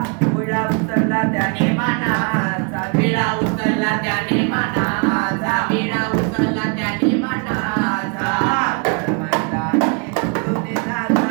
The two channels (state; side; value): quieter; left; 36.0 dB